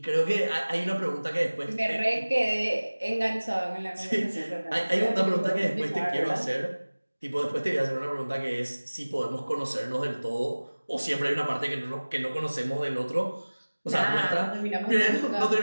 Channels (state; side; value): inverted; both; correlation -1.00